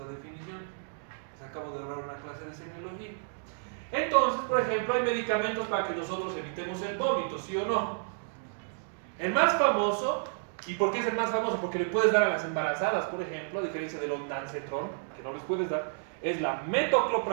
definición. Les acabo de ahorrar una clase de semiología. Entonces, por ejemplo, hay medicamentos para que nosotros evitemos el vómito, ¿sí o no? El más famoso, ¿y por qué es el más famoso? Porque le puedes dar a las embarazadas, por ejemplo, a diferencia del ondansetron, que no les puedes dar, es la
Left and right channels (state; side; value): silent; left; digital silence